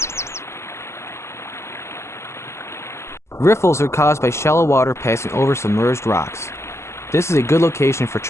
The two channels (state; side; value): late; right; 0.13 ms